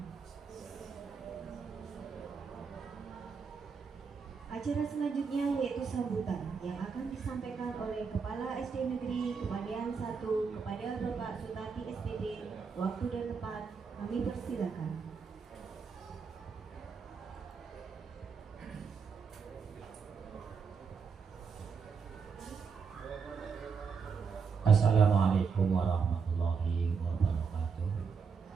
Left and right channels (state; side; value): quieter; left; 5.7 dB